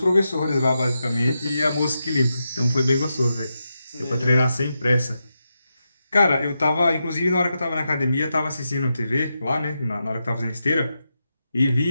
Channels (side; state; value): both; inverted; correlation -0.87